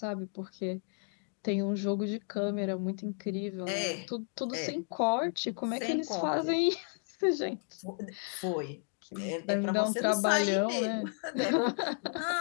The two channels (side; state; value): right; silent; 56 dB below the other